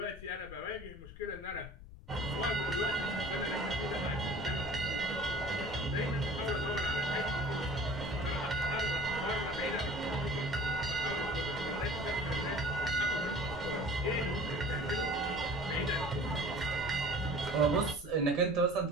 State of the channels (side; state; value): left; noise; rumble, 15 dB below the sound